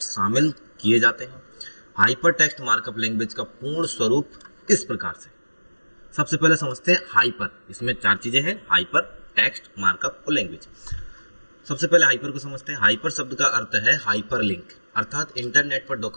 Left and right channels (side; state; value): both; inverted; correlation -1.00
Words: शामिल किए जाते हैं। हाइपर टेक्स्ट मार्कअप लैंग्वेज का पूर्ण स्वरूप इस प्रकार से। सबसे पहले समझते हैं हाइपर। इसमें 4 चीजें हैं, हाइपर, टेक्स्ट, मार्कअप और लैंग्वेज। सबसे पहले हाइपर को समझते हैं। हाइपर शब्द का अर्थ है हाइपर लिंक, अर्थात इंटरनेट पर